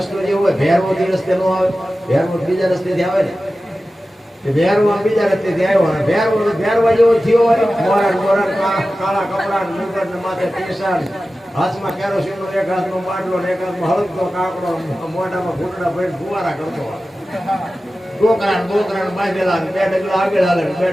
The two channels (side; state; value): both; normal; correlation 0.95